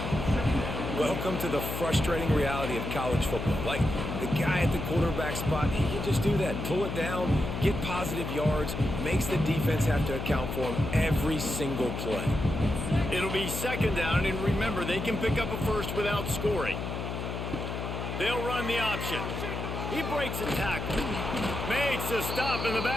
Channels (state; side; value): noise; left; hum, 4 dB below the sound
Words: Welcome to the frustrating reality of college football. Like, the guy at the quarterback spot, he can just do that. Pull it down, get positive yards, makes the defense have to account for him every single play. It'll be 2nd down, and remember, they can pick up a first without scoring. They'll run the option. He breaks a tackle. Makes a stop in the